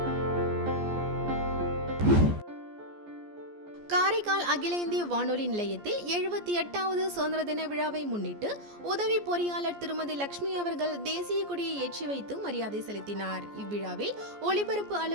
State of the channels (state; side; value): late; left; 14 ms